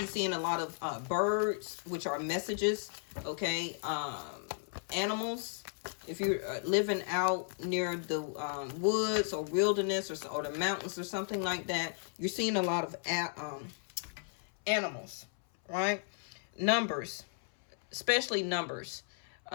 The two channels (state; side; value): silent; right; 55 dB below the other